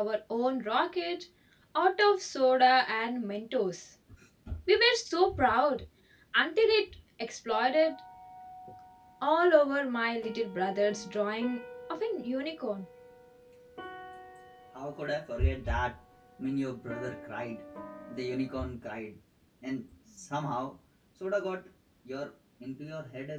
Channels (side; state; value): both; identical; correlation 1.00